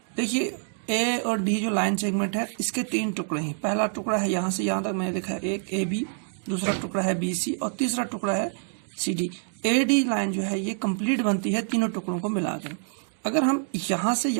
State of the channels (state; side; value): silent; left; 61 dB below the other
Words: देखिए A और D जो लाइन सेगमेंट है इसके 3 टुकड़े हैं. पहला टुकड़ा है यहाँ से यहाँ तक मैंने लिखा है एक AB, दूसरा टुकड़ा है BC और तीसरा टुकड़ा है CD. AD लाइन जो है ये कंप्लीट बनती है तीनों टुकड़ों को मिलाकर. अगर हम यहाँ से